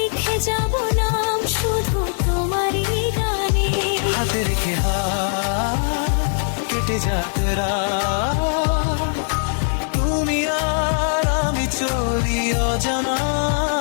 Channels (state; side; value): silent; right; 65 dB below the other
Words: যাব নাম শুধু তোমারই গানে। হাতে রেখে হাত কেটে যাক রাত, তুমি আর আমি চলি